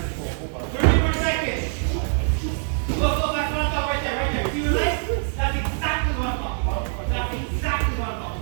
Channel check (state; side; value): silent; left; 63 dB below the other